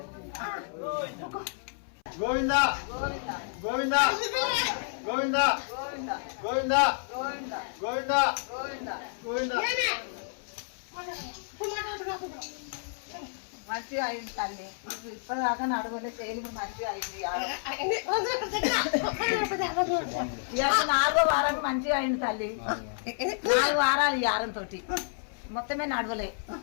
గోవింద గోవింద గోవింద గోవింద గోవింద గోవింద మంచిగా అయింది తల్లి. ఇప్పటిదాకా నడవలే చేయలేదు, మంచిగా అయింది. 4వ వారం మంచిగా అయింది తల్లి. 4 వారాలు ఈ వారం తోటి మొత్తమే నడవలే.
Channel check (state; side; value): silent; right; 58 dB below the other